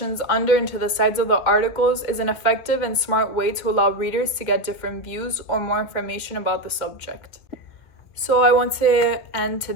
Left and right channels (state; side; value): late; right; 2.3 ms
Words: under into the sides of the articles is an effective and smart way to allow readers to get different views or more information about the subject. So I want to end